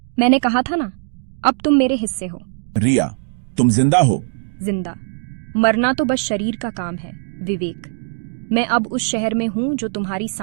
मैंने कहा था ना, अब तुम मेरे हिस्से हो। रिया, तुम जिंदा हो? जिंदा मरना तो बस शरीर का काम है विवेक। मैं अब उस शहर में हूं जो तुम्हारी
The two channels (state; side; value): silent; left; digital silence